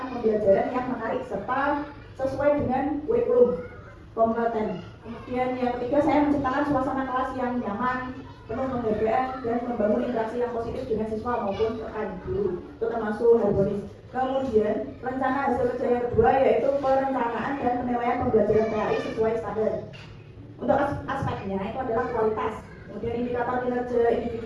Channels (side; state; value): both; identical; correlation 1.00